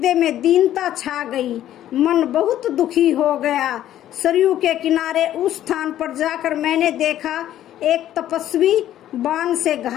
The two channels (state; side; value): quieter; right; 12.2 dB